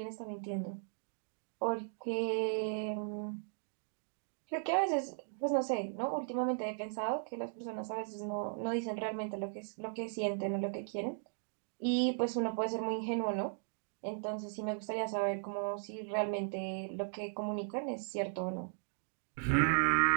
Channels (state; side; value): silent; left; digital silence